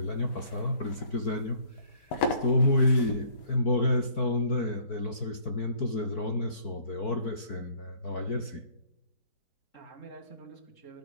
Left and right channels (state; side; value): late; right; 4.6 ms